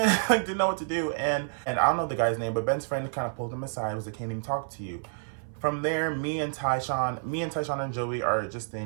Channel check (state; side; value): silent; left; 56 dB below the other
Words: didn't know what to do. And I don't know the guy's name, but Ben's friend kind of pulled him aside and was like, can't even talk to you. From there, me and Tyshawn and Joey are just